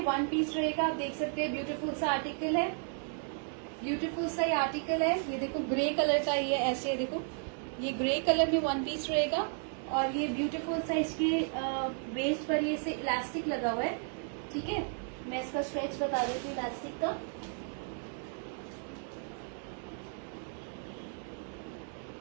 वन पीस रहेगा। आप देख सकते हैं ब्यूटीफुल सा आर्टिकल है, ब्यूटीफुल सा ये आर्टिकल है। ये देखो ग्रे कलर का, ये ऐसे देखो, ये ग्रे कलर में वन पीस रहेगा। और ये ब्यूटीफुल सा इसके वेस्ट पर ये से इलास्टिक लगा हुआ है, ठीक है। मैं इसका स्ट्रेच बता देती हूँ इलास्टिक का।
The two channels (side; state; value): left; silent; 55 dB below the other